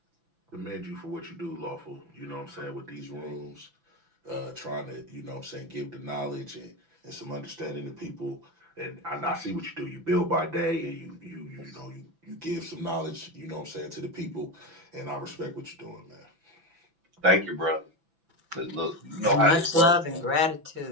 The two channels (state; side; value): late; left; 6.0 ms